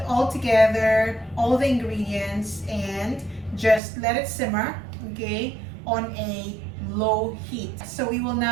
all together all the ingredients and just let it simmer, okay, on a low heat. So we will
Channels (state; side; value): drops out; left; at 3.8 s